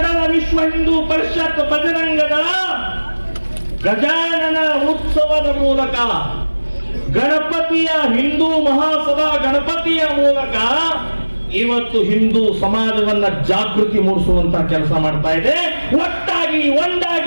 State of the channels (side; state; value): both; inverted; correlation -1.00